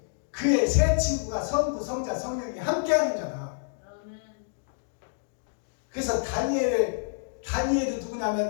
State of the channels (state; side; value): silent; right; digital silence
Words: 그의 세 친구가 성부, 성자, 성령이 함께하는 자다. 아멘. 그래서 다니엘이